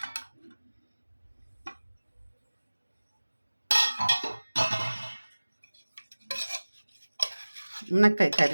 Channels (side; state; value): both; inverted; correlation -1.00